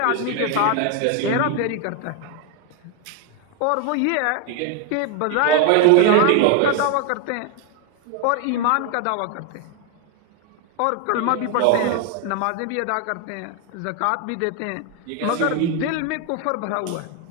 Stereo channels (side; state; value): both; different; correlation 0.01